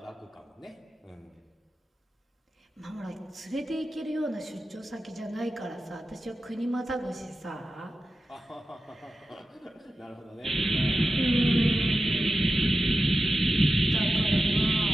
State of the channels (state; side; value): normal; both; correlation 0.92